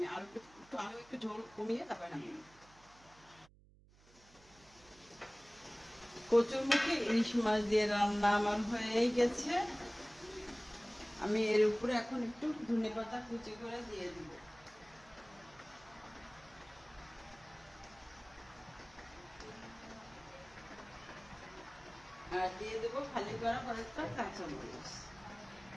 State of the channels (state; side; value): noise; right; hum, 26 dB below the sound